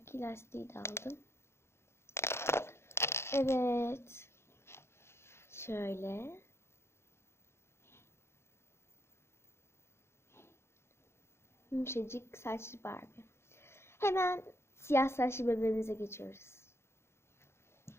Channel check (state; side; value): late; right; 0.12 ms